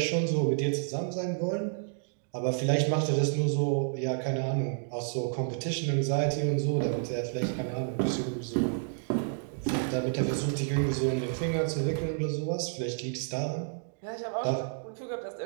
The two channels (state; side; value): silent; left; digital silence